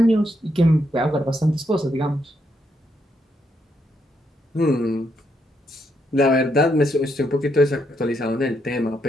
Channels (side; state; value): both; normal; correlation 0.77